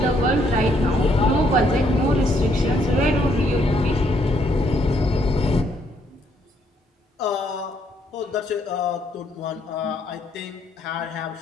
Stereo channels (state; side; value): normal; both; correlation 0.71